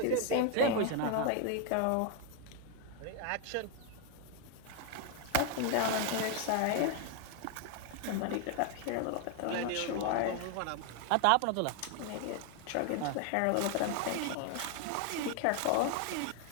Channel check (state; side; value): different; both; correlation 0.01